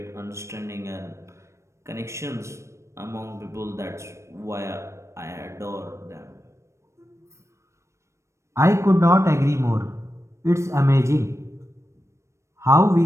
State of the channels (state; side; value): late; left; 0.14 ms